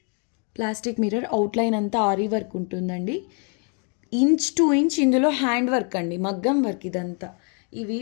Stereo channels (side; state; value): right; quieter; 38.7 dB